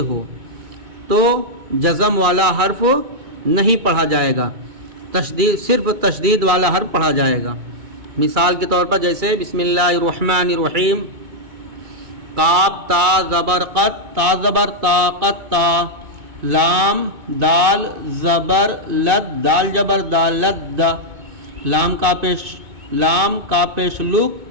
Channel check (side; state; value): left; late; 2.2 ms